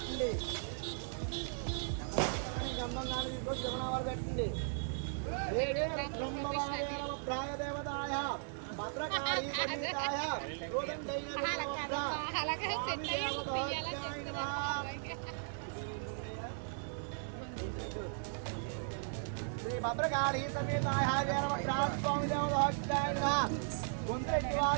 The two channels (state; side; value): silent; left; digital silence